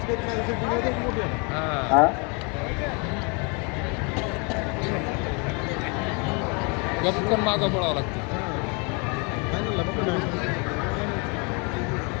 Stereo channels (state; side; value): quieter; right; 32.8 dB